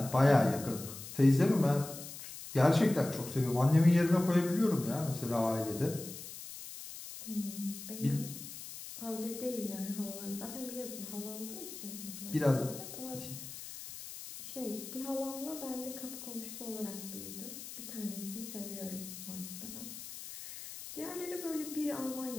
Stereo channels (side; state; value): left; noise; hiss, 11 dB below the sound